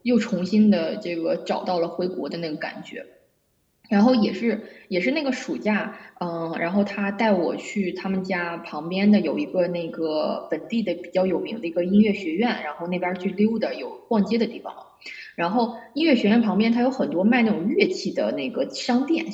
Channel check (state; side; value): identical; both; correlation 1.00